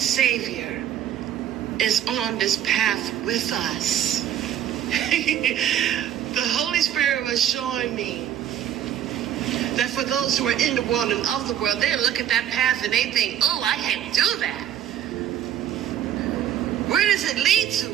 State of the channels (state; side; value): quieter; left; 10.6 dB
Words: is on this path with us. The Holy Spirit was showing me that for those who are in the world and of the world, they look at that path and they think, oh, I can't do that. Where does it lead to?